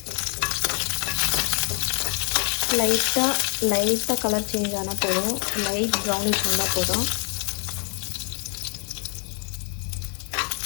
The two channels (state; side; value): quieter; right; 39.6 dB